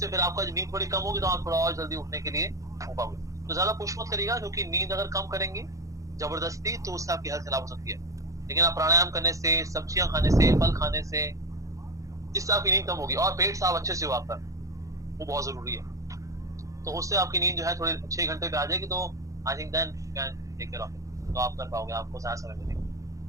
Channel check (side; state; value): left; late; 0.16 ms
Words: फिर आपका नींद थोड़ी कम होगी तो आप थोड़ा और जल्दी उठने के लिए हो पाओगे। तो ज्यादा पुश मत करिएगा, क्योंकि नींद अगर कम करेंगे जबरदस्ती तो उससे आपकी हेल्थ खराब हो सकती है। लेकिन आप प्राणायाम करने से, सब्जियां खाने से, फल खाने से, इससे आपकी नींद कम होगी। और पेट साफ अच्छे से हो आपका, वो बहुत जरूरी है। तो उससे आपकी नींद जो है थोड़ी 6 घंटे पे आ जाएगी, तो I think then can take care of it, तो आप कर पाओगे, आपको ज्यादा समय मिलेगा।